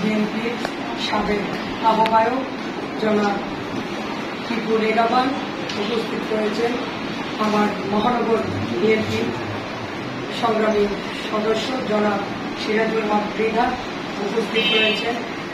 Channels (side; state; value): both; identical; correlation 1.00